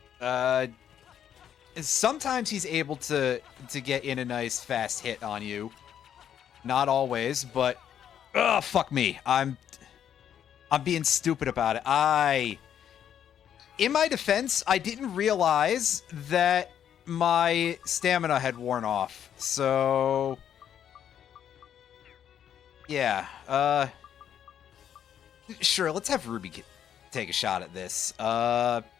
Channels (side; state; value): right; quieter; 9.4 dB